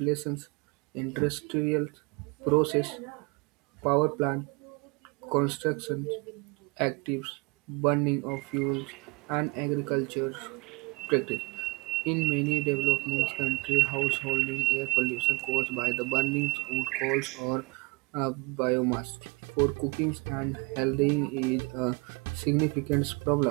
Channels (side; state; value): left; quieter; 25.7 dB